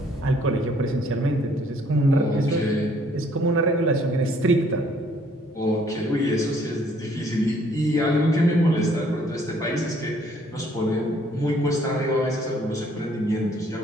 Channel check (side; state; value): both; normal; correlation 0.63